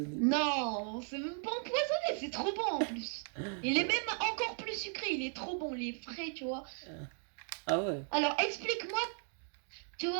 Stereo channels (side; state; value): left; silent; 54 dB below the other